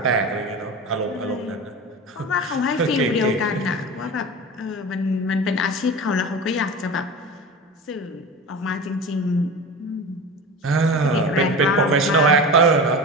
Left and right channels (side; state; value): both; normal; correlation 0.30